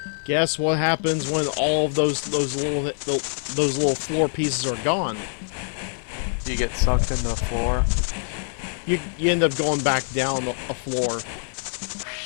Guess what happens when all of those little floor pieces are gone? You get sucked into the floor. You end up going back down a floor.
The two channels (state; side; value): silent; right; 62 dB below the other